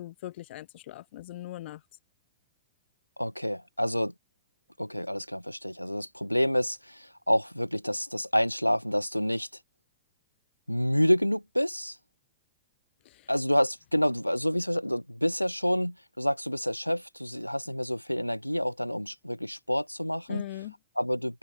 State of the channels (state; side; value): inverted; both; correlation -0.99